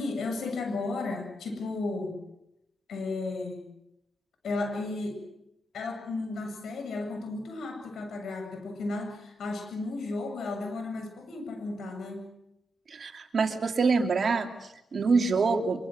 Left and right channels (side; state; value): both; normal; correlation 0.84